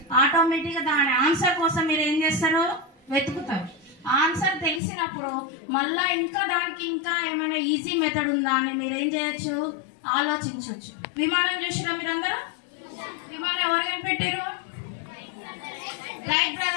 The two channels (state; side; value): drops out; right; at 4.8 s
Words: ఆటోమేటిక్గా దాని ఆన్సర్ కోసం మీరు ఏం చేస్తారు, వెతుకుతారు. ఆన్సర్ తెలిసినప్పుడు మళ్ళీ దానికి ఇంకా ఏమైనా ఈజీ మెథడ్ ఉందా అని మీరు ఏం చేయొచ్చు, ఆలోచించవచ్చు. విమానం చూసినా మీరందరూ? విమానం ఎవరు కనిపెట్టారు? రైట్